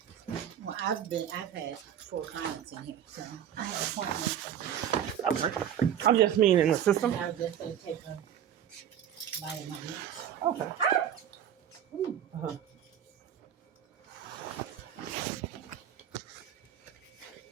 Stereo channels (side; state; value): left; quieter; 9.7 dB